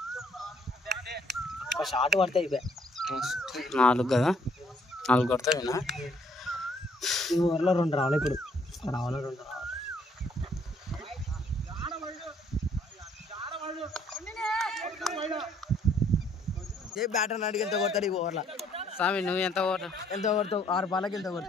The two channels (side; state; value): both; normal; correlation 0.65